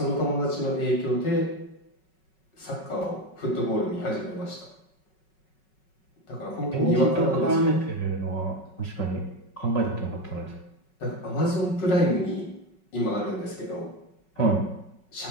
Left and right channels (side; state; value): right; late; 5.4 ms